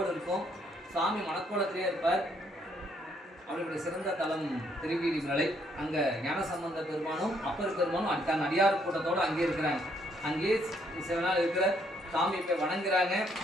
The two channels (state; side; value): normal; both; correlation 0.70